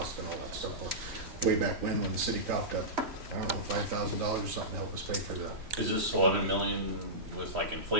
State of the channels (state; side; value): late; left; 3.1 ms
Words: and all that stuff. Way back when the city coughed up, I don't know, $5,000 or something to help us pay for that. Is this 11 million with like